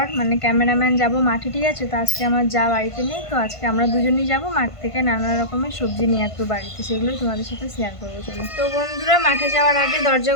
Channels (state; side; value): late; right; 1.5 ms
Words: মানে ক্যামেরাম্যান যাব মাঠে, ঠিক আছে। তো আজকে আমার যা বাড়িতে নেই, তো আজকে আমরা দুজনেই যাব মাঠ থেকে নানা রকমের সবজি নিয়ে আসবো বাড়িতে, সেগুলোই তোমাদের সাথে শেয়ার করবো। চলো তো বন্ধুরা, মাঠে যাওয়ার আগে